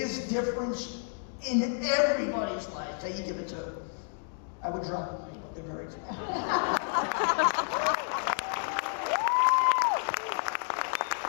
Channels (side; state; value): right; silent; digital silence